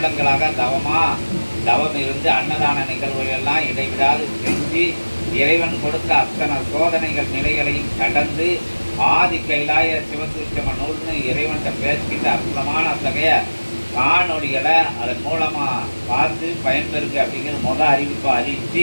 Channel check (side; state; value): both; inverted; correlation -1.00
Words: தவம் இருந்து அன்னதான நிகழ்வுகளெல்லாம் இடைவிடாது செஞ்சு இறைவன் கொடுத்த அத்தனை சோதனைகள் நிலைகளையும் கடந்து ஆதி கைலாய சிவசூட்சம நூல்னு இறைவன்கிட்ட பேசிக்கிட்ட அற்புதமான அத்தகைய காணொலிகளை அதன் மூலமாக பார்த்து பயன்பெறுங்க அப்படிங்கிற அறிவிப்பை